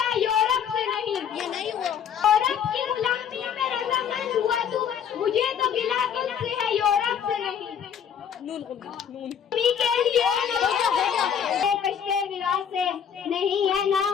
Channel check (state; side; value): quieter; right; 8.1 dB